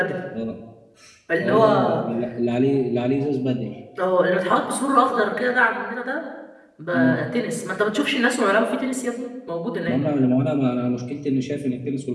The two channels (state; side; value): identical; both; correlation 1.00